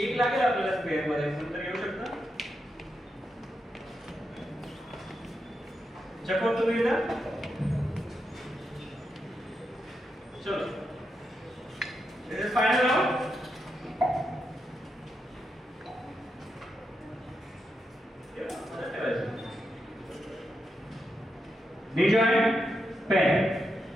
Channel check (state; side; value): normal; both; correlation 0.85